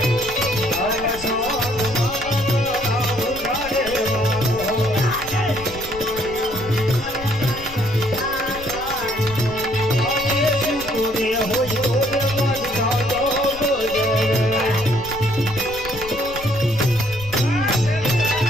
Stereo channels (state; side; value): noise; left; rumble, 15 dB below the sound